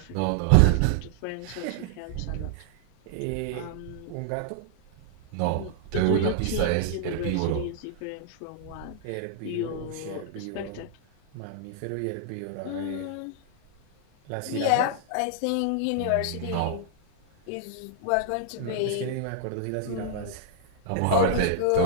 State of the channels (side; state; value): both; different; correlation -0.01